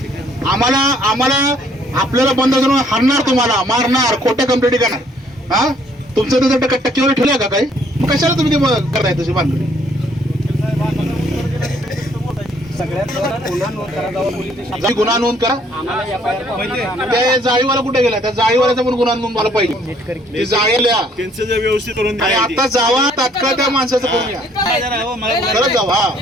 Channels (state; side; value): normal; both; correlation 0.63